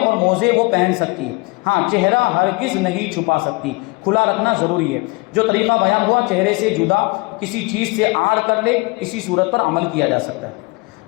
موزے وہ پہن سکتی ہے۔ ہاں، چہرہ ہرگز نہیں چھپا سکتی، کھلا رکھنا ضروری ہے۔ جو طریقہ بیان ہوا چہرے سے جدا کسی چیز سے آڑ کر لے، اسی صورت پر عمل کیا جا سکتا ہے۔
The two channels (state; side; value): quieter; right; 26.1 dB